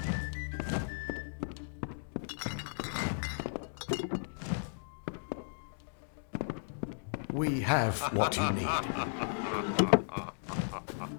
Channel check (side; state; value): right; silent; digital silence